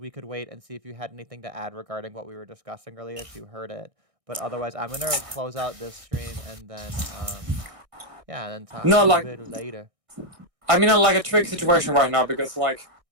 could wait and see if you had anything to add regarding what we were discussing earlier, if you heard it. But otherwise, I'm gonna close out this stream and then yeah, and then talk a little bit later. I'm in a tricky situation right now because I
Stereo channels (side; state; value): left; late; 1.6 ms